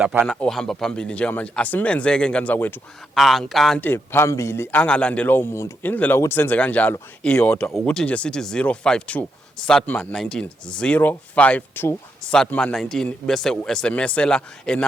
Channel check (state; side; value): normal; both; correlation 0.82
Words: laphana ohamba phambili njengamanje asimenzeke ngane zakwethu ankante phambili angalandelwa umuntu indlela ukuthi senze kanjalo iyodwa ukuthi nje sithi 052 Satman 19 052 Satman 19 bese u-SMSela